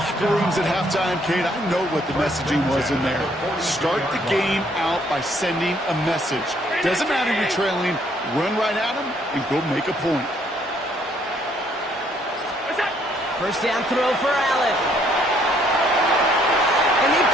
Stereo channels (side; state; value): both; normal; correlation 0.67